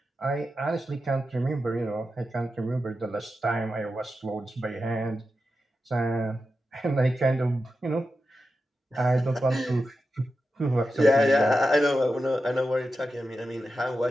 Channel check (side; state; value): both; normal; correlation 0.90